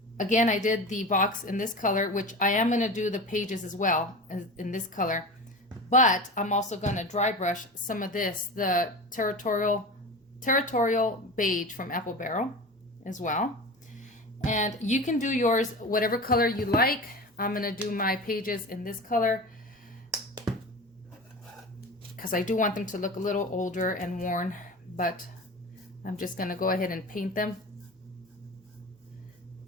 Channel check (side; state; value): both; normal; correlation 0.31